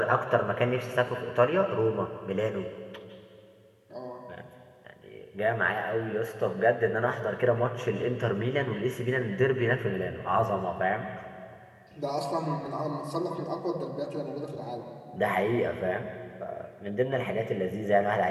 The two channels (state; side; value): identical; both; correlation 1.00